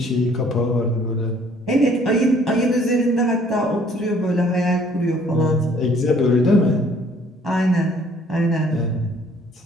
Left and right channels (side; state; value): both; normal; correlation 0.59